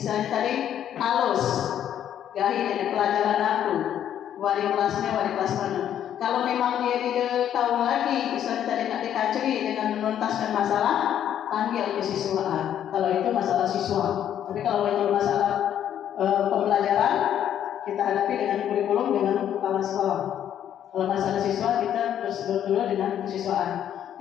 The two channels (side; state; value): right; quieter; 10.2 dB